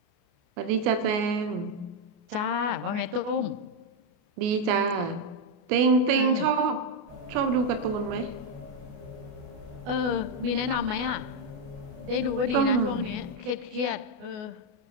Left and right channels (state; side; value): late; left; 28 ms